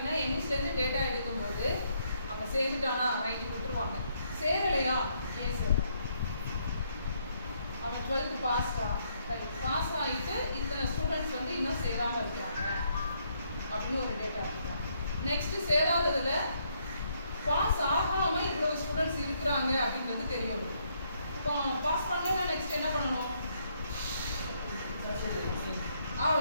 எமிஸ்லேருந்து டேட்டா எடுக்கும்போது அவன் சேர்ந்துட்டானா ரைட்டு விட்டுருவாங்க, சேரலையா ஏன் சேரல, அவன் 12th பாஸ்டா ரைட் பாஸ் ஆகிட்டு இத்தனை ஸ்டூடெண்ட்ஸ் வந்து இன்னும் சேராமல் இருக்கிறாங்க அப்படின்னு ஒரு டேட்டா எடுக்கிறாங்க. நெக்ஸ்ட்டு சேராததில் பாஸ் ஆகாமல் இவ்வளோ ஸ்டூடெண்ட்ஸ் இருக்கிறாங்க அப்படின்றது தெரியும். இப்போ பாஸ் பண்ணலன்னா நெக்ஸ்ட் என்ன பண்ணணும்,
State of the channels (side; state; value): both; inverted; correlation -0.72